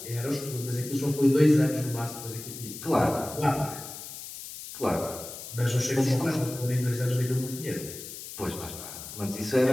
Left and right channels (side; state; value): left; noise; hiss, 11 dB below the sound